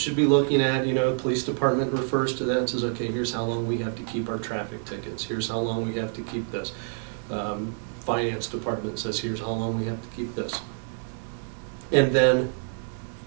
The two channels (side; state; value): left; silent; 60 dB below the other